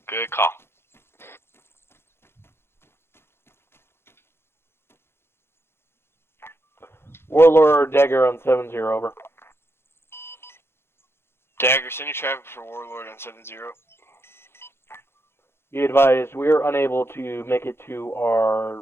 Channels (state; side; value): late; right; 0.12 ms